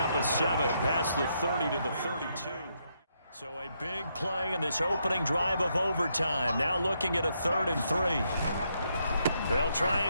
of 7 past the 30 to the 32. So a big play in this opening drive of overtime. Now looking at a 3rd and 3. They'll try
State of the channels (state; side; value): inverted; both; correlation -0.78